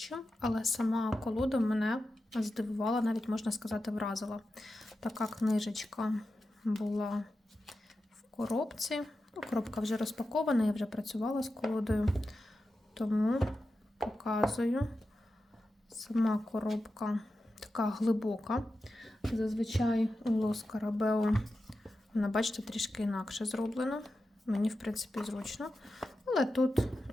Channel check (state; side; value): normal; both; correlation 0.91